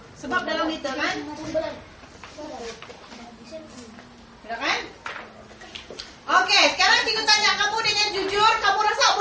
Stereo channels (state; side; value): identical; both; correlation 1.00